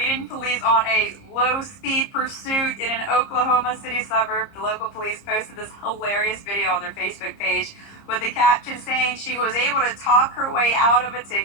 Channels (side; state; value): right; late; 30 ms